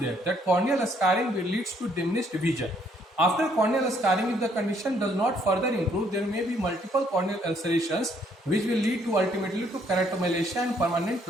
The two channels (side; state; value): both; normal; correlation 0.67